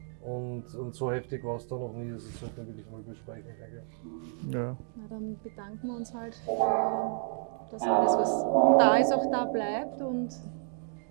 und so heftig war es da noch nie. Das sollten wir wirklich mal besprechen, denke ich. Ja. Na, dann bedanken wir uns halt, dass alles, was da ist, auch da bleibt und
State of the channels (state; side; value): silent; left; digital silence